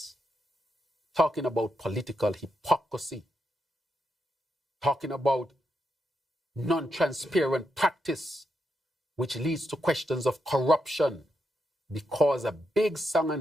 talking about political hypocrisy, talking about non-transparent practice, which leads to questions of corruption, because a big song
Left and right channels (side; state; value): both; normal; correlation 0.83